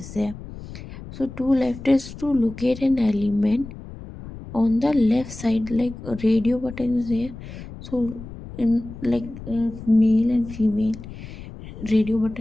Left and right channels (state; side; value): noise; left; rumble, 13 dB below the sound